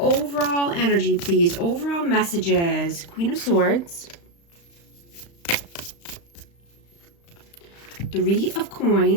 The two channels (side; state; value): right; late; 35 ms